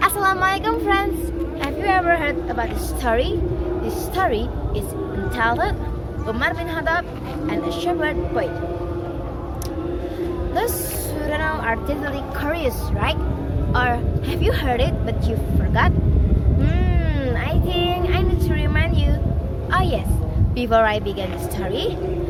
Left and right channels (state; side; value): identical; both; correlation 1.00